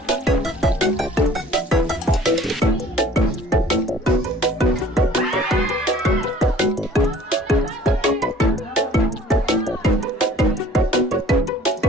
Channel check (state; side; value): normal; both; correlation 0.52